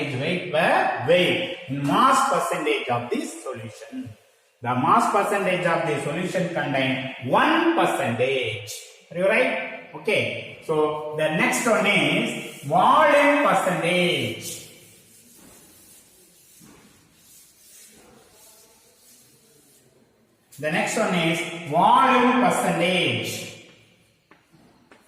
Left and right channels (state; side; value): identical; both; correlation 1.00